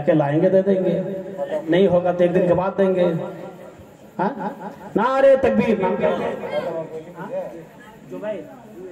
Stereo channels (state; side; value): identical; both; correlation 1.00